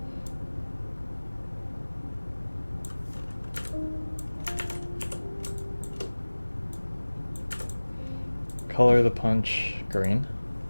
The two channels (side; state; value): both; inverted; correlation -1.00